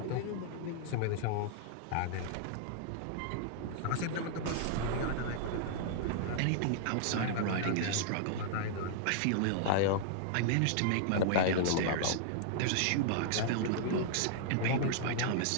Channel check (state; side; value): different; both; correlation -0.01